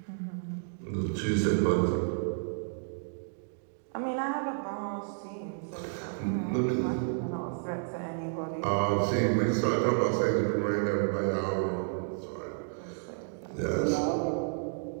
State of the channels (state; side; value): silent; left; digital silence